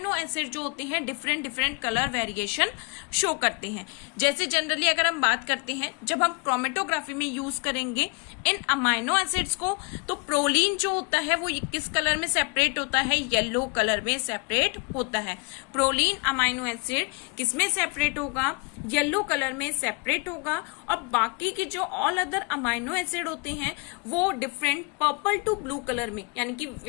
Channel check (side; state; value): right; quieter; 31.5 dB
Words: एसिड जो होते हैं different different colour variation show करते हैं। जैसे जनरली अगर हम बात करते हैं, जब हम क्रोमेटोग्राफी में यूज करेंगे इन अमाइनो एसिड्स को, तो प्रोलीन जो होता है वो किस कलर में सेपरेट होता है, येलो कलर में सेपरेट होता है। प्रोलीन अमाइनो एसिड किस में सेपरेट होगा, येलो कलर में सेपरेट होगा। और बाकी के जो ऑल अदर अमाइनो एसिड होते हैं वो different purple to blue colour में, यानी कि